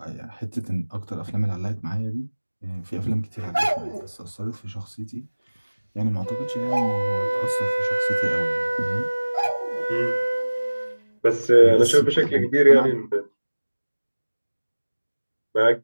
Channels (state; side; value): inverted; both; correlation -1.00